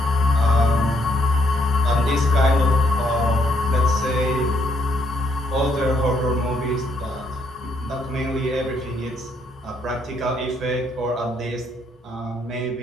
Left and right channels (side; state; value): both; normal; correlation 0.72